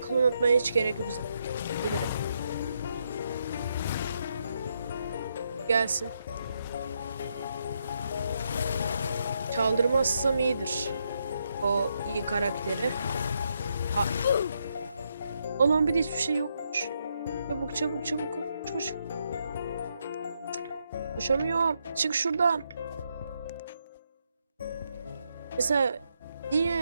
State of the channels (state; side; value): inverted; both; correlation -0.79